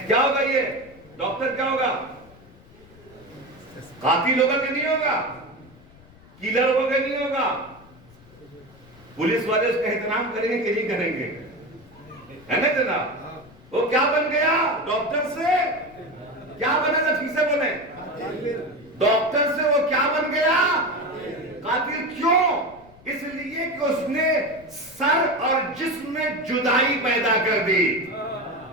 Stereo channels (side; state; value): left; noise; rumble, 24 dB below the sound